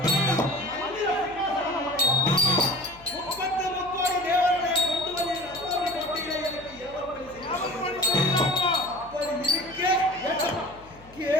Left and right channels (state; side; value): noise; left; hum, 23 dB below the sound